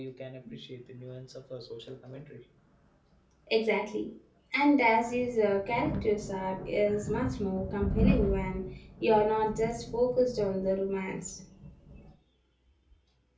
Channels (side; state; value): both; identical; correlation 1.00